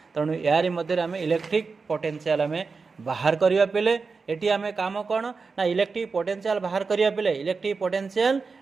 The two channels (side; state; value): left; quieter; 4.6 dB